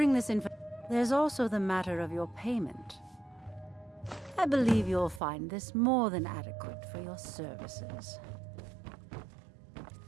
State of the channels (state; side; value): drops out; left; at 5.2 s